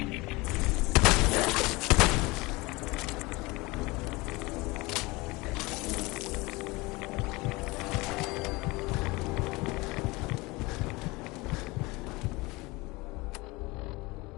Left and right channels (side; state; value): right; quieter; 23.4 dB